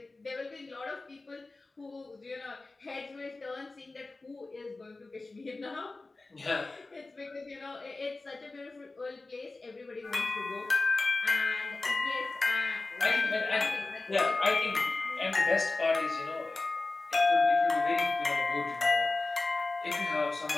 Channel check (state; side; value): quieter; right; 3.4 dB